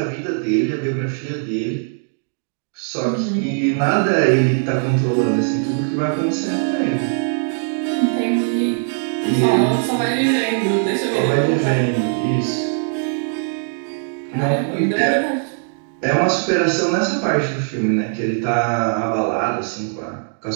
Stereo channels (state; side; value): silent; left; digital silence